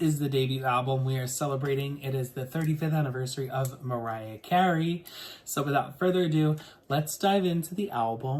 the debut album we are celebrating. It is the 35th anniversary of Mariah Carey. So without further ado, let's dive into the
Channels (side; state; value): both; identical; correlation 1.00